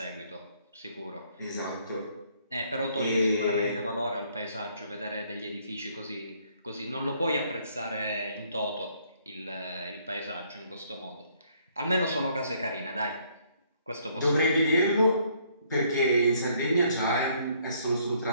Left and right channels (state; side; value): inverted; both; correlation -0.66